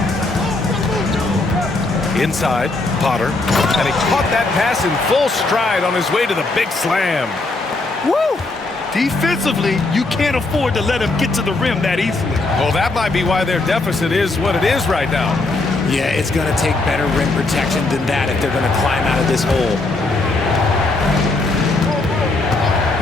Inside, Potter. And he caught that pass in full stride on his way to the big slam. Woo! Defensively, you can't afford to let him get to the rim that easily. Well, that might be why their deficit is what it is right now. Yeah, it's going to take better rim protection than that if they're going to climb out of this hole.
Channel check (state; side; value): quieter; right; 3.2 dB